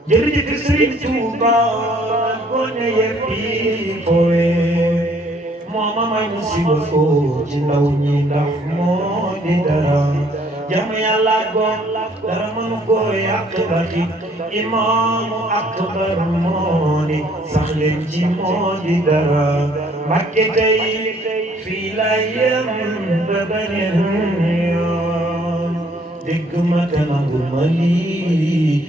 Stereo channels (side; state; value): both; normal; correlation 0.62